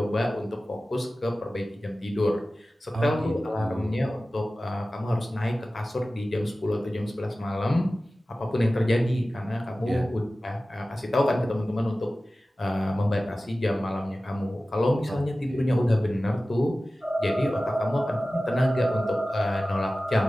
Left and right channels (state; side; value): normal; both; correlation 0.96